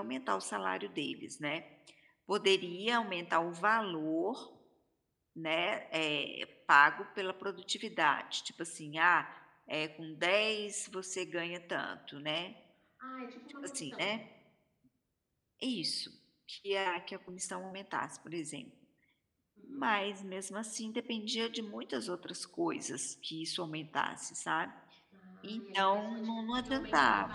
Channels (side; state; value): both; identical; correlation 1.00